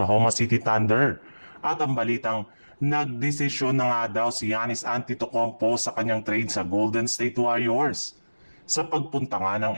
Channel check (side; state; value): both; inverted; correlation -1.00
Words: City Thunder. At ang balitang nagdesisyon na nga daw si Giannis Antetokounmpo sa kanyang trade sa Golden State Warriors. Sa pagpunta nga ng